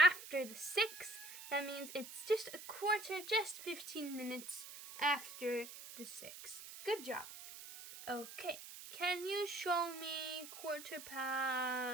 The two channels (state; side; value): noise; right; hiss, 13 dB below the sound